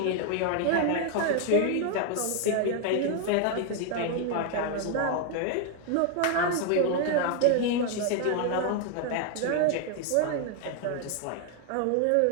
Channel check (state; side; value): different; both; correlation 0.00